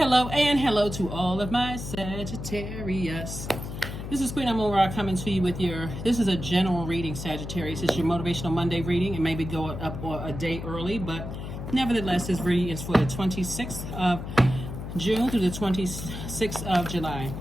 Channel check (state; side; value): noise; left; hum, 7 dB below the sound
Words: and hello to all of my Sagittarius. This is Queen Amun Ra coming to you with this is a general reading, Sagittarius. It's your Motivational Monday reading. It may be going up a day early, but nevertheless, this reading is for the 26th of June through the 26th of July.